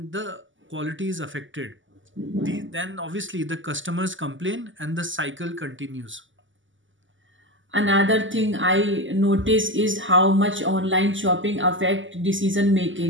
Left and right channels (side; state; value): left; late; 0.56 ms